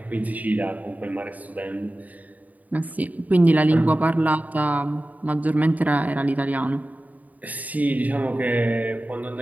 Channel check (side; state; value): left; late; 0.075 ms